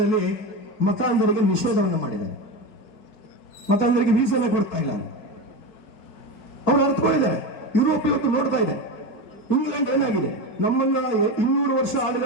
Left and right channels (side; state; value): right; late; 4.6 ms